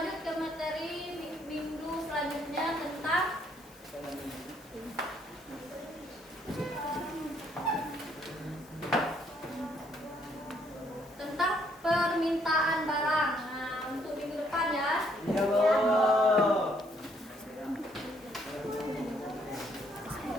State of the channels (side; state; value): left; noise; hiss, 25 dB below the sound